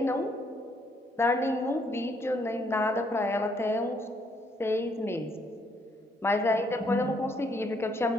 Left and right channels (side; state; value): both; normal; correlation 0.70